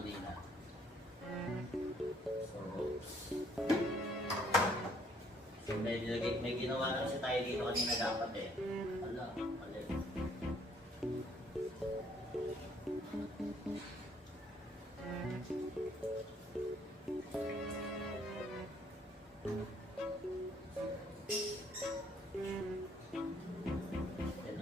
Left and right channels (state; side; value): normal; both; correlation 0.65